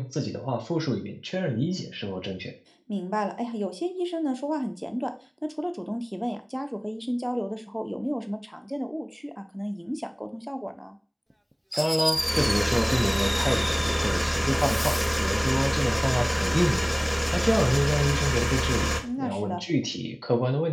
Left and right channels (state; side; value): identical; both; correlation 1.00